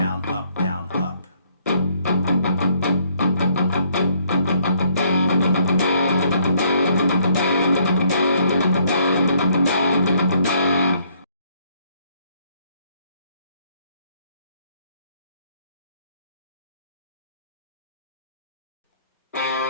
up, down, up.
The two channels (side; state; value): both; inverted; correlation -0.66